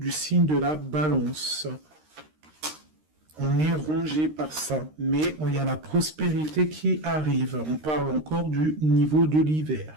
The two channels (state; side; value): late; left; 13 ms